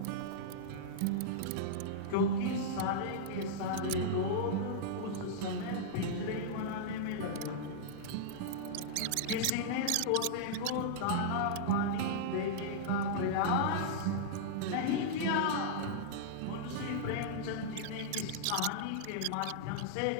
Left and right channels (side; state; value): both; different; correlation -0.02